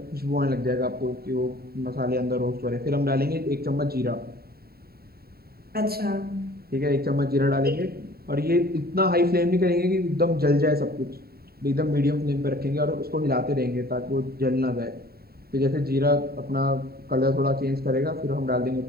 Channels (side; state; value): left; late; 0.45 ms